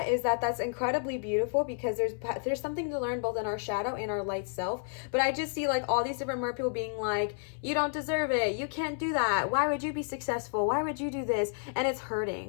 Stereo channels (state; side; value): silent; right; 57 dB below the other